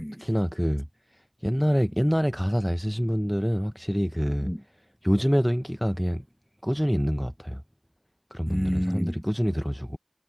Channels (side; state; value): both; identical; correlation 1.00